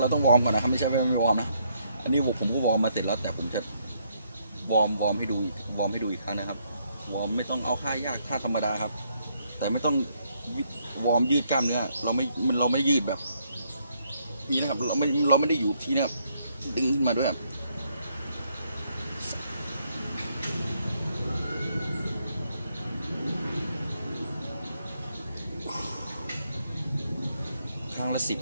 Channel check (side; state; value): both; inverted; correlation -0.73